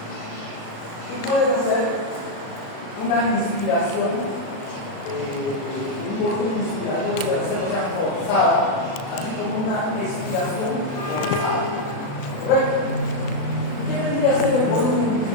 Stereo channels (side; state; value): right; late; 36 ms